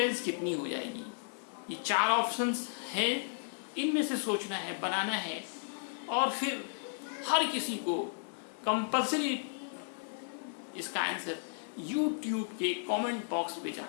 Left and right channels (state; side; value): silent; right; digital silence